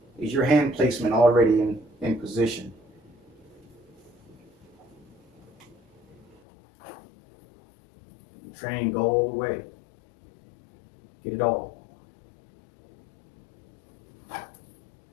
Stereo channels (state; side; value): drops out; right; at 6.4 s